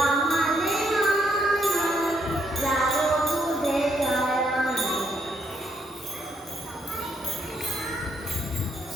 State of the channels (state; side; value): normal; both; correlation 0.74